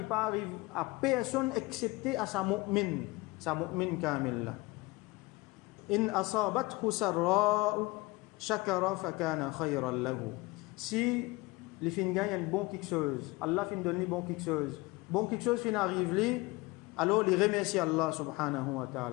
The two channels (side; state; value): right; quieter; 22.5 dB